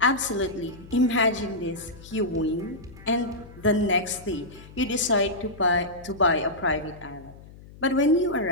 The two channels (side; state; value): left; noise; hum, 19 dB below the sound